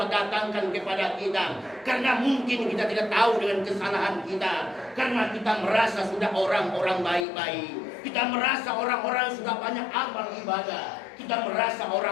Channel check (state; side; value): drops out; right; at 7.2 s